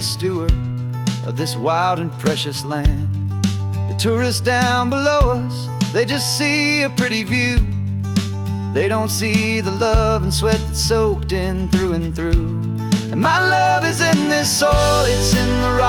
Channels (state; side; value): identical; both; correlation 1.00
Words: steward of this wild and precious land. The tourists down below us, they just see a pretty view. They don't see the love and sweat that's soaked in through and through. And my love is in this soil, it's in the